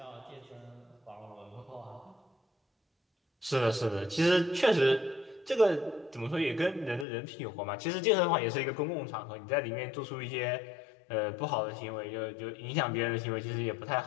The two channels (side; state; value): right; drops out; at 7.1 s